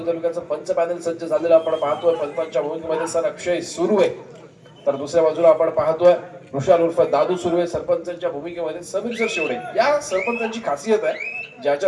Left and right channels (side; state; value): both; identical; correlation 1.00